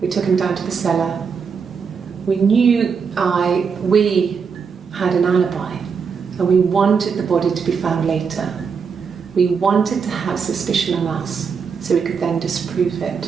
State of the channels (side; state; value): left; quieter; 6.0 dB